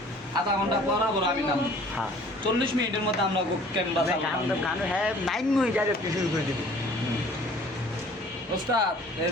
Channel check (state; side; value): normal; both; correlation 0.52